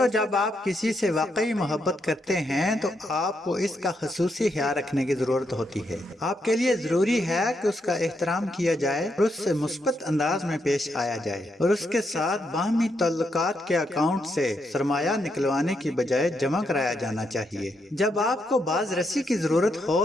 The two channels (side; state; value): both; normal; correlation 0.79